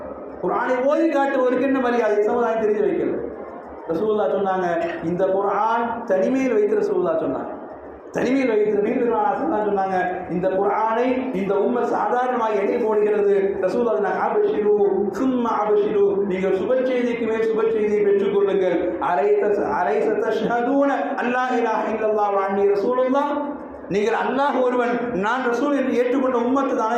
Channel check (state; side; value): identical; both; correlation 1.00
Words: குர்ஆனை ஓதி காட்டுவதற்கு என்ன மரியாதை சமுதாயம் தெரிஞ்சு வைக்கல. ரசூலுல்லாஹ் சொன்னாங்க, இந்த குர்ஆன் தனிமையில் வைத்து ரசூலுல்லாஹ் சொன்னாங்க, தனிமையில் வைத்து நீண்ட சொன்னாங்க, இந்த குர்ஆனை இந்த உம்மை சாதாரணமாக எடை போடுகிறது. ரசூலுல்லாஹ் அபஷிரு சும்மா அபஷிரு, நீங்கள் சுப செய்திக்கு மேல் சுப செய்தியை பெற்றுக் கொள்ளுங்கள். அலைஸ தஷ்ஹதூன அல்லா இலாஹ இல்லல்லாஹ் வ அன்னி ரசூலுல்லாஹ், நீங்கள் அல்லாஹ் ஒருவன் நான் ரசூல் என்று ஏற்றுக்கொண்ட உம்மத்து